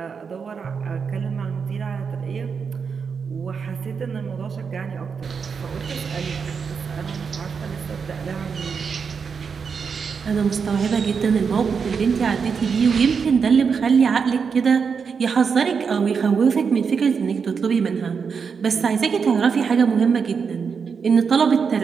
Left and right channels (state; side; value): quieter; left; 6.0 dB